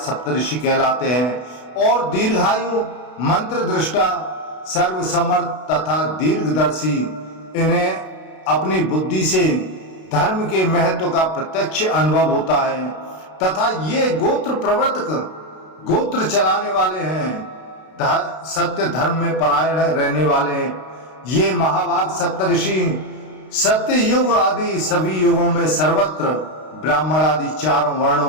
कहलाते हैं और दीर्घायु, मंत्र दृष्टा, सर्वसमर्थ तथा दीर्घदर्शी। इन्हें अपनी बुद्धि से धर्म के महत्व का प्रत्यक्ष अनुभव होता है तथा ये गोत्र प्रवर्तक, गोत्र चलाने वाले हैं, सत्य धर्म में परायण रहने वाले हैं। ये महाभाग सप्तऋषि सत्य युग आदि सभी युगों में सर्वत्र ब्राह्मण आदि 4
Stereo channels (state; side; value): late; right; 32 ms